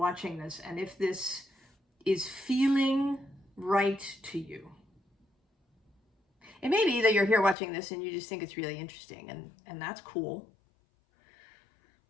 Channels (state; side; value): drops out; right; at 7.6 s